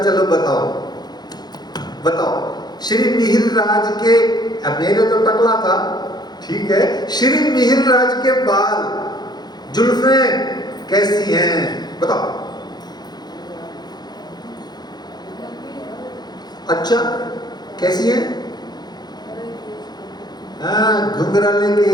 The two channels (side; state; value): right; late; 0.20 ms